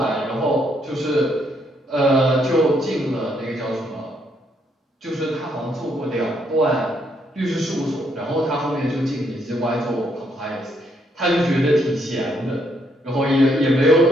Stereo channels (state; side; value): normal; both; correlation 0.73